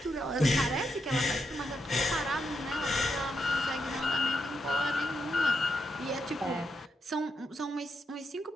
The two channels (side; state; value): both; normal; correlation 0.82